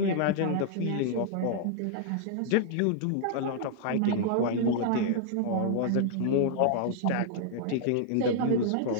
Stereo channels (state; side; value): different; both; correlation -0.01